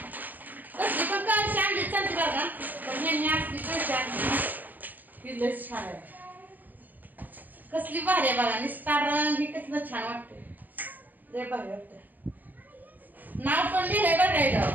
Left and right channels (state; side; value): late; left; 0.084 ms